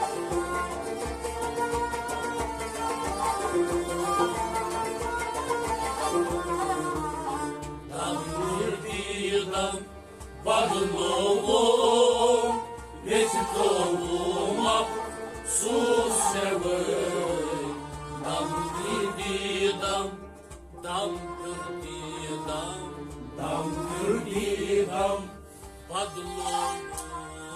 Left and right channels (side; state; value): both; identical; correlation 1.00